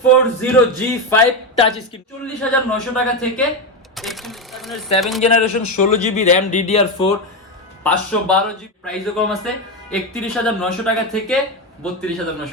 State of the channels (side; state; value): both; normal; correlation 0.13